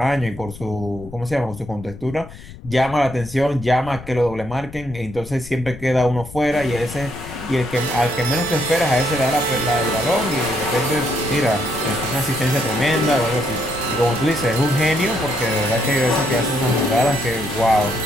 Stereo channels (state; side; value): noise; left; rumble, 16 dB below the sound